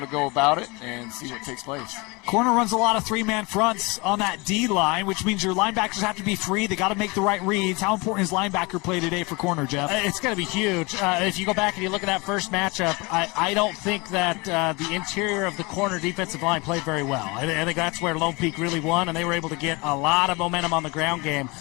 to go about it and see what takes place. Corner runs a lot of three-man fronts on that D-line, which means your linebackers have to be free. They got to make the right reads. How important is linebacker play today for corner, Jeff? It's going to be huge. If you go back and you look at that first matchup, I don't think that the interior of the corner defensive line played very well. I think that's where Lone Peak really won, and they were able to get a lot of momentum on the ground game.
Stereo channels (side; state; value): right; quieter; 26.5 dB